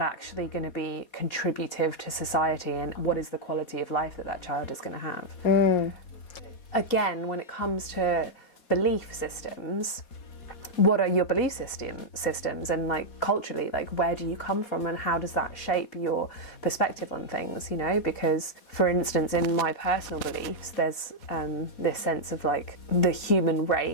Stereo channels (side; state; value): right; late; 4.2 ms